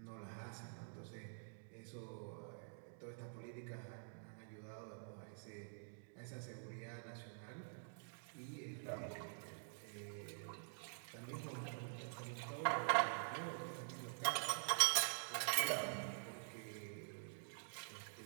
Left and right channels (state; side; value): silent; left; digital silence